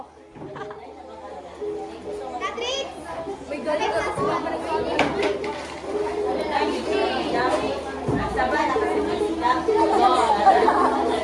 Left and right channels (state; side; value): identical; both; correlation 1.00